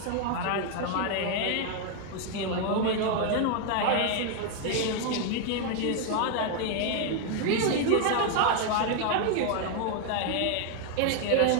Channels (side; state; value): both; different; correlation 0.01